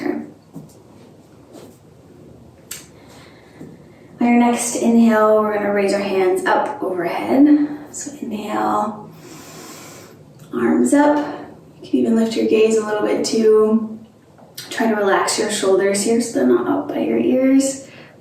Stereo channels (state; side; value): identical; both; correlation 1.00